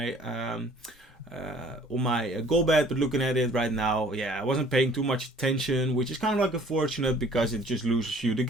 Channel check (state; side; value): normal; both; correlation 0.54